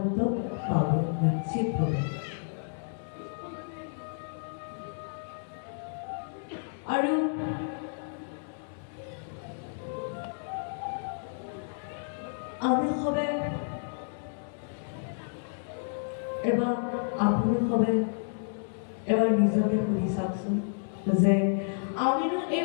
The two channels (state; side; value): silent; right; digital silence